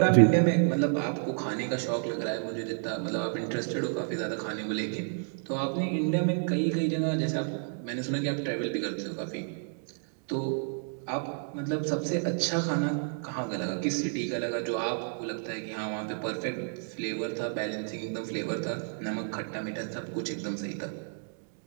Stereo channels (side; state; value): left; silent; 57 dB below the other